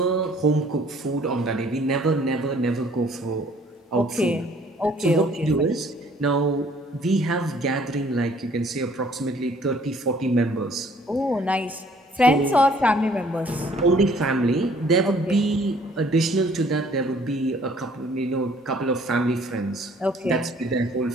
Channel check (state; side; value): normal; both; correlation 0.58